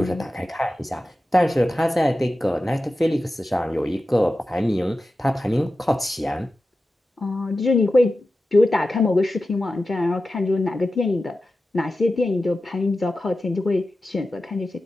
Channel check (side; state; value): both; normal; correlation 0.93